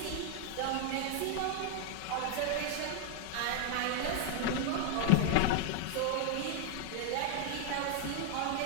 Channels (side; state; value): both; different; correlation 0.00